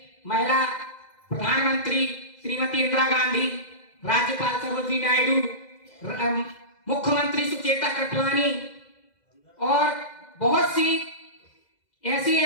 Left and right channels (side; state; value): right; late; 2.0 ms